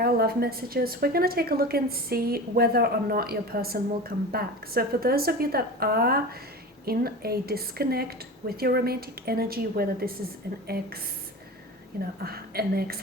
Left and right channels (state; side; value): normal; both; correlation 0.31